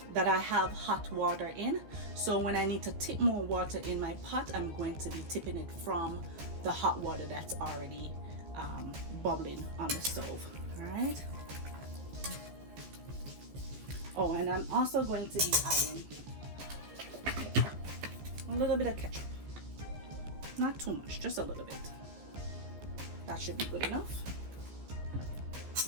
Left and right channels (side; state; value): left; late; 14 ms